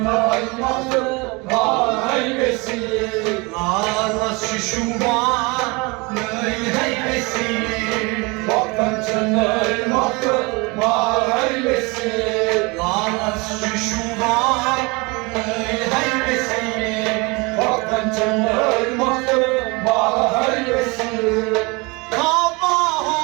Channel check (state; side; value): quieter; left; 27.1 dB